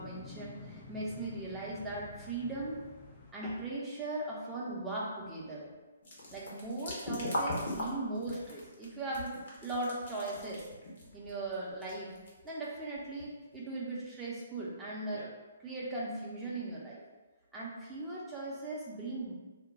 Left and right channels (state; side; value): inverted; both; correlation -0.52